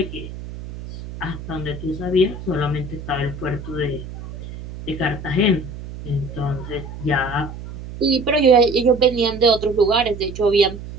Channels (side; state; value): right; noise; hum, 11 dB below the sound